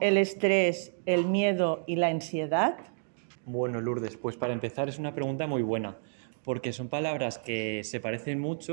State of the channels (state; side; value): silent; left; digital silence